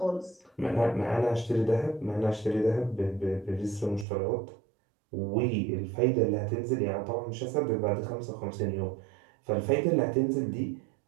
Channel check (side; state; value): left; drops out; at 4.0 s